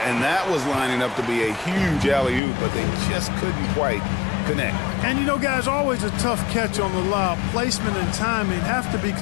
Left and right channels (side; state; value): right; drops out; at 2.4 s